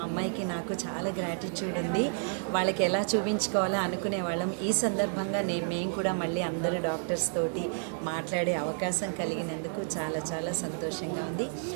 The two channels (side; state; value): left; silent; 57 dB below the other